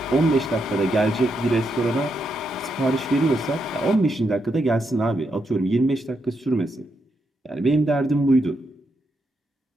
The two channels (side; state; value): both; normal; correlation 0.81